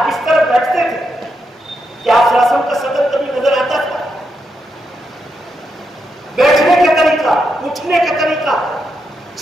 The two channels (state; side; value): normal; both; correlation 0.83